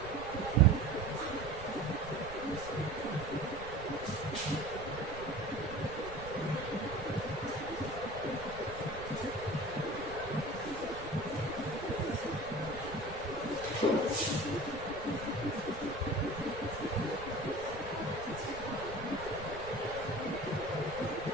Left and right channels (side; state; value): right; noise; rumble, 13 dB below the sound